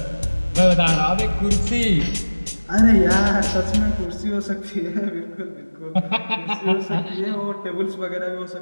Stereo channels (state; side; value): inverted; both; correlation -1.00